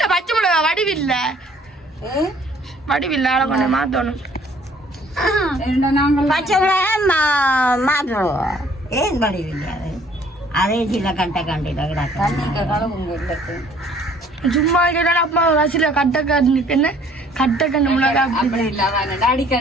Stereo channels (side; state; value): both; normal; correlation 0.58